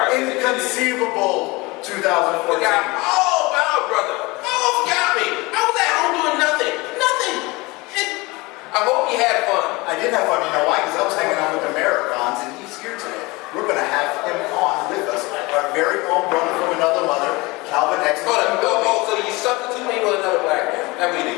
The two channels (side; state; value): right; quieter; 23.6 dB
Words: Inconceivable 2014. Wow, brother. Forgot me. I was at home doing nothing. I hope you had fun. I did have fun. You know why? Because I was hanging out with Americans, and he's here today. We're going to have him on with us. Our very own brother from another mother, Calvin X. So you substitute me with another black man. I mean,